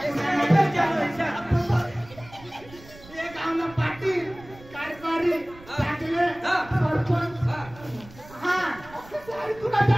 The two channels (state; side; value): noise; right; rumble, 21 dB below the sound